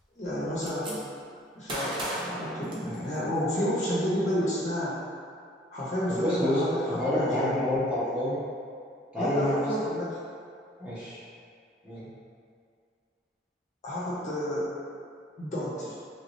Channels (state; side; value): normal; both; correlation 0.55